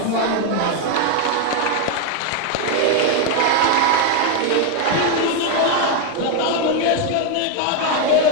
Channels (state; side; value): different; both; correlation 0.01